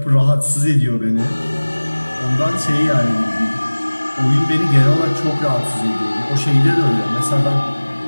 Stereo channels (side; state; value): both; inverted; correlation -1.00